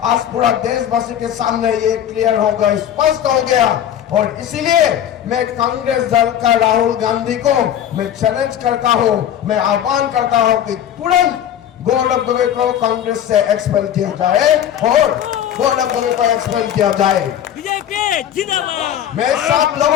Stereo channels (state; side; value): quieter; right; 10.3 dB